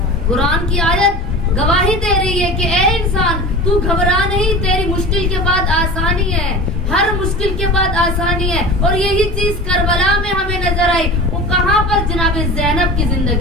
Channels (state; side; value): normal; both; correlation 0.34